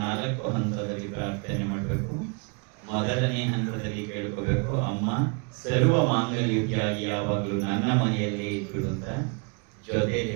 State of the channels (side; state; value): left; quieter; 34.0 dB